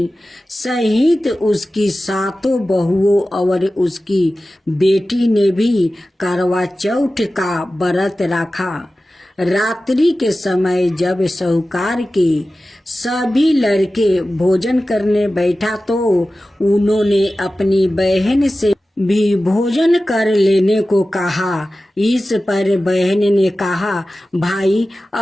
सहित उसकी 7 बहुओं और उसकी बेटी ने भी करवा चौथ का व्रत रखा। रात्रि के समय जब साहूकार के सभी लड़के भोजन करने बैठा तो उन्होंने अपनी बहन से भी भोजन कर लेने को कहा। इस पर बहन ने कहा, भाई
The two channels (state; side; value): normal; both; correlation 0.95